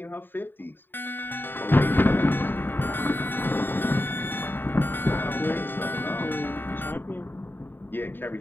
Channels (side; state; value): right; late; 0.095 ms